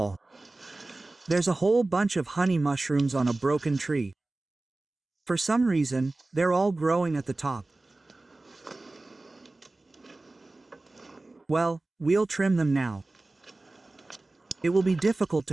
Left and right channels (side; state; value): left; quieter; 3.0 dB